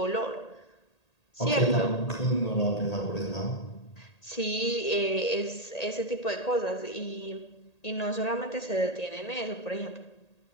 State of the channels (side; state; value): right; late; 1.8 ms